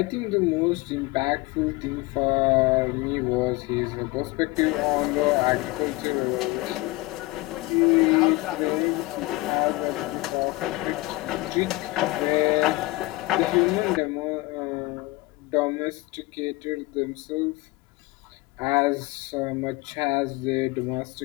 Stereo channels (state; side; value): quieter; right; 21.3 dB